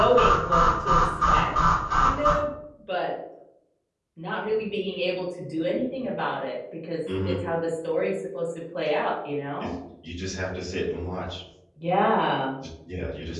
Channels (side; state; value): both; identical; correlation 1.00